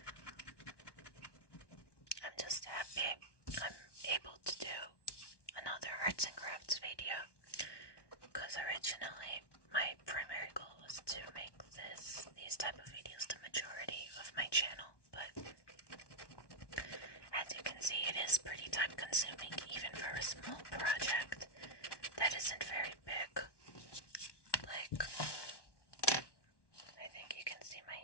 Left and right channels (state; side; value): late; right; 1.2 ms